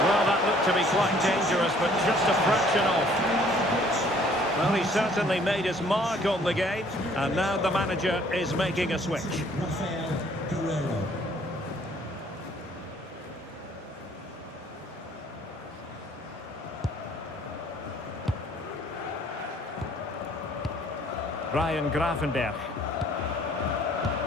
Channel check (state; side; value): normal; both; correlation 0.59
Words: Well, that looked to be quite dangerous, but just a fraction off. Well, he certainly made his mark on the game, and now the manager is making a switch. Ryan Gravenberch.